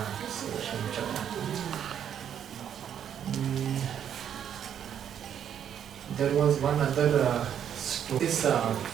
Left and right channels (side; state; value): left; quieter; 9.1 dB